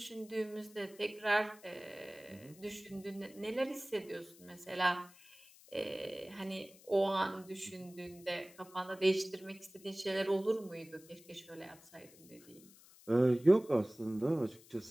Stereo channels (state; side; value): noise; left; hiss, 23 dB below the sound